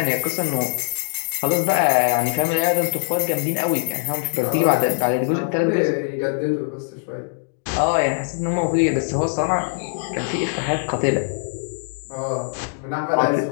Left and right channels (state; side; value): silent; right; digital silence